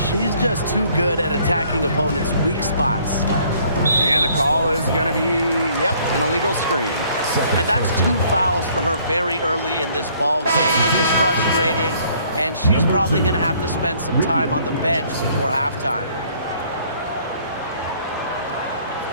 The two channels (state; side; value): inverted; both; correlation -0.61